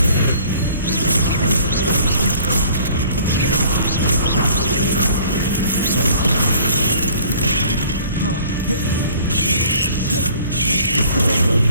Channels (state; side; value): inverted; both; correlation -0.53